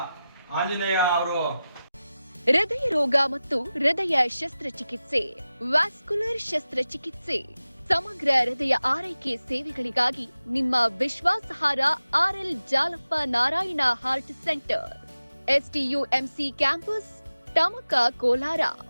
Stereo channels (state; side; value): inverted; both; correlation -0.94